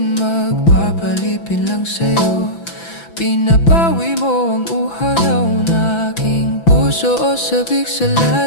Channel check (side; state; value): right; late; 5.9 ms